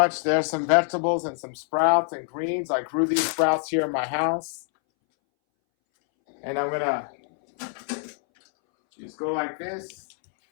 there's some vegetables and some sprouts and greens. I grew these sprouts here in my house. And I'm going to just go like this.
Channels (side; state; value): right; silent; 61 dB below the other